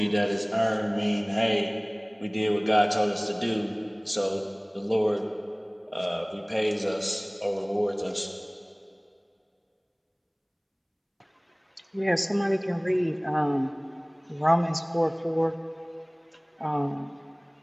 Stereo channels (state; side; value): identical; both; correlation 1.00